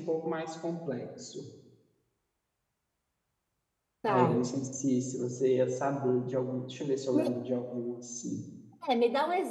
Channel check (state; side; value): identical; both; correlation 1.00